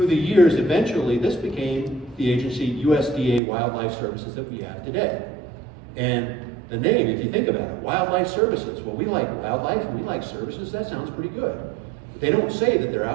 the years, eventually, this became the agency USDA Wildlife Services that we have today. And the name, if you think about it, Wildlife Services, well, we like wildlife and we like services, that sounds pretty good. They don't say that they're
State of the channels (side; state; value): left; drops out; at 3.4 s